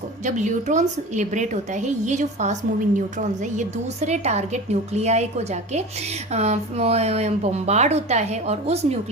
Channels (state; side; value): normal; both; correlation 0.33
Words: जब न्यूट्रॉन्स लिबरेट होता है, ये जो फास्ट मूविंग न्यूट्रॉन्स है ये दूसरे टारगेट न्यूक्लियाई को जाके बम्बार्ड होता है और उस